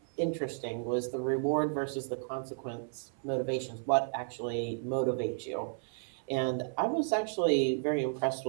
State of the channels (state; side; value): silent; left; 56 dB below the other